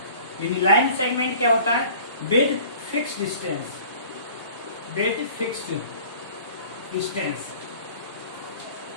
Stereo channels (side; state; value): both; inverted; correlation -0.47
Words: line segment क्या होता है? विद फिक्स्ड डिस्टेंस,